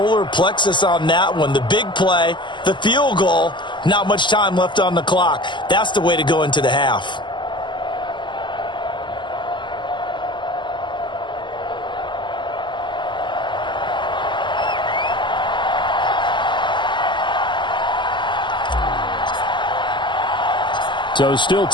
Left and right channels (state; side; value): late; right; 0.22 ms